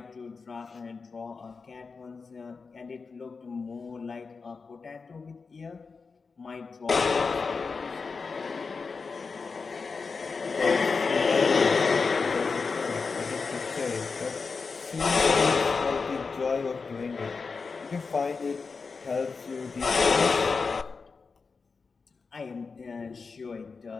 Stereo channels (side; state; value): right; quieter; 4.7 dB